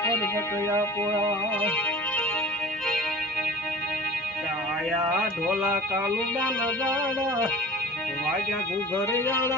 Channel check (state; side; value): normal; both; correlation 0.40